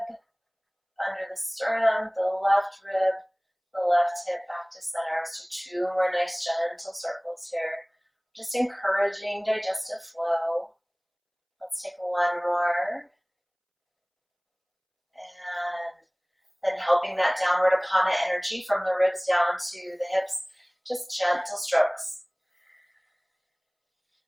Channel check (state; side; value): identical; both; correlation 1.00